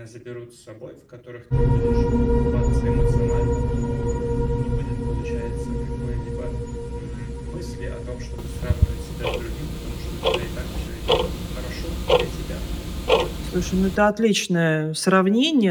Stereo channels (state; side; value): identical; both; correlation 1.00